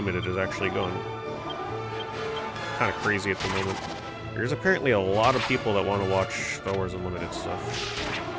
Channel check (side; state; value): both; identical; correlation 1.00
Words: is actually going kind of crazy at the moment. There's apparently a lot of people that want to watch Star Wars Unlimited stuff.